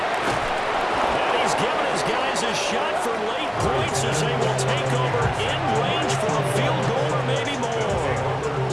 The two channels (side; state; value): both; identical; correlation 1.00